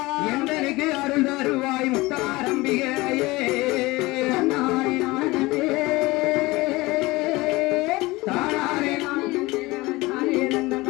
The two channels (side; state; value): right; quieter; 21.3 dB